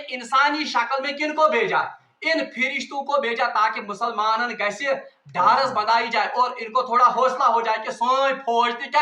इंसानी शक्ल में किनको भेजा, इन फिरिश्तों को भेजा, ताकि मुसलमान गैसे ढारस बनाई जाए और इनको थोड़ा हौसला हो जाए कि सोई फौज थी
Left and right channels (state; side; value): identical; both; correlation 1.00